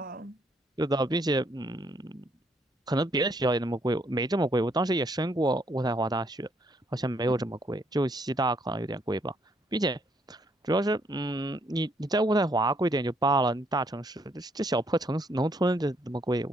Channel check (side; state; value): both; normal; correlation 0.70